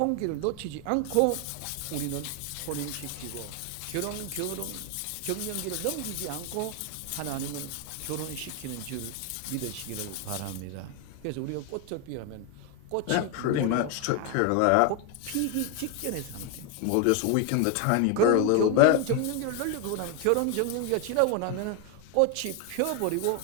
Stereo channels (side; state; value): both; different; correlation 0.01